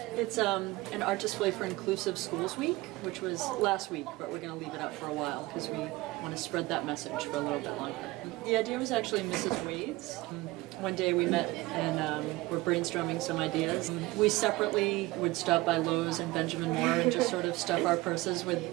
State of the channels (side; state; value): left; quieter; 20.3 dB